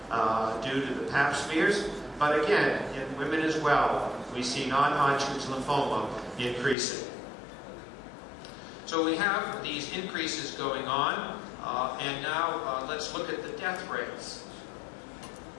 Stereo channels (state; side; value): drops out; right; at 6.8 s